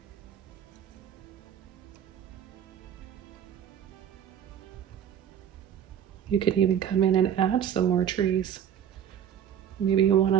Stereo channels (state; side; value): quieter; left; 9.1 dB